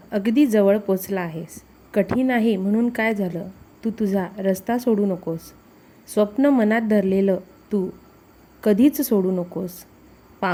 अगदी जवळ पोचला आहेस. कठीण आहे म्हणून काय झालं? तू तुझा रस्ता सोडू नकोस. स्वप्न मनात धरलेलं तू कधीच सोडू नकोस.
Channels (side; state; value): both; identical; correlation 1.00